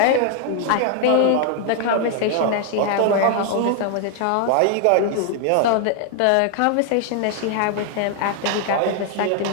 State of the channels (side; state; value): both; different; correlation 0.00